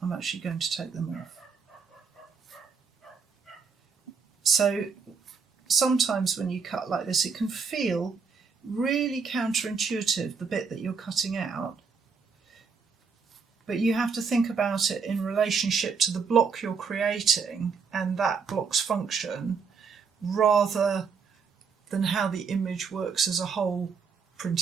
I'm actually going to take them off. So sometimes when you cut like this, it can feel really counterintuitive, the bit that you're cutting out. But you have to think about it in relationship to the block you're creating and that block's function, rather than how the image works as a whole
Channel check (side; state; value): left; quieter; 5.6 dB